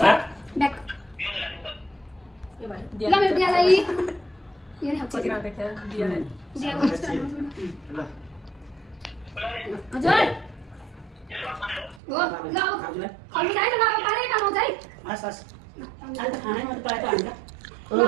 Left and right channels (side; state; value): left; drops out; at 12.0 s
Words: सा ब्याक ल मेरो दियालाई यो नै खाउँछु हजुर हो ल खानु चाहिँ ल पारै खानु चाहिँ हस् हस् अहिले त खानै मात्रै पाएको हामीलाई